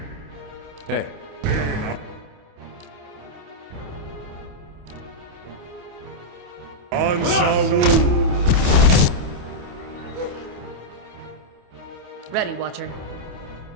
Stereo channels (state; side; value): late; left; 28 ms